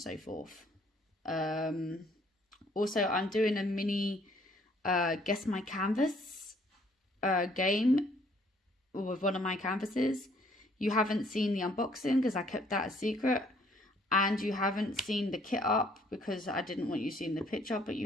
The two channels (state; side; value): normal; both; correlation 0.63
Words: forth. Also, I'm doing a mini Guess My Canvas game with one of my canvases. You haven't seen the unboxing because I kept that a secret, and you haven't seen the kit up because I didn't want you seeing the picture, but